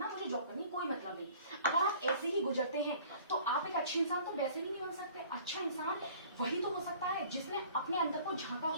मुझे जॉब करनी, कोई मतलब नहीं, अगर आप ऐसे ही गुजरते हैं तो आप एक अच्छे इंसान तो वैसे ही नहीं बन सकते। अच्छा इंसान वही तो हो सकता है जिसने अपने अंदर को झांका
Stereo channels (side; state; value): both; inverted; correlation -0.50